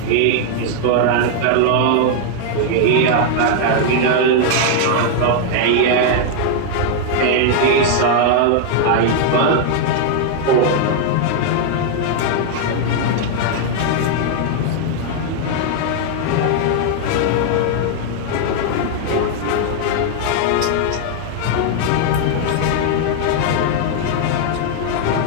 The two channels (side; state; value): both; different; correlation 0.00